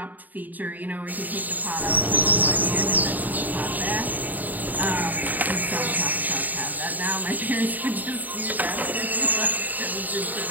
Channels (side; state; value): left; late; 0.084 ms